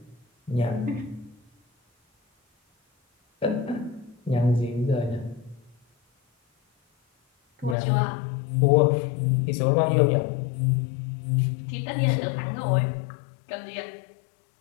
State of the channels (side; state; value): right; drops out; at 7.8 s